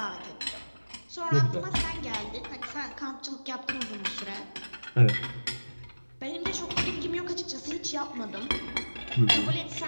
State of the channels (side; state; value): both; inverted; correlation -1.00